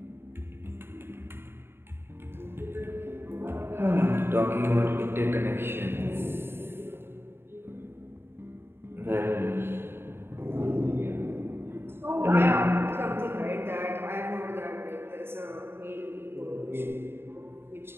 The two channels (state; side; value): late; left; 0.11 ms